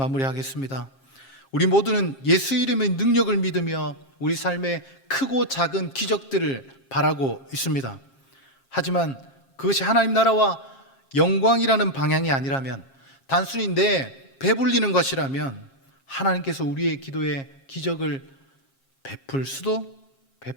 우리 모두는 예수 이름의 능력을 믿으며 우리 삶의 크고 작은 기적들을 바라고 있습니다. 하지만 그것이 하나님 나라와 영광이라는 방향이 아니라면, 단순히 내 배불리는 것이라면 하나님께서 우리의 기도에 기적을 베풀 수도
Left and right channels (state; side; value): late; right; 7.4 ms